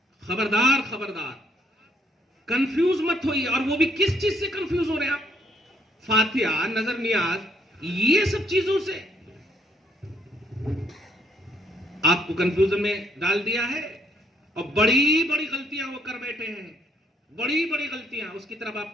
खबरदार खबरदार, कंफ्यूज मत होइए। और वो भी किस चीज से कंफ्यूज हो रहे हैं आप? फातिहा, नजर नियाज, ये सब चीजों से आपको कंफ्यूजन में डाल दिया है। और बड़ी बड़ी गलतियां वो कर बैठे हैं, बड़ी बड़ी गलतियां, उसकी तरफ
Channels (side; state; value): both; normal; correlation 0.70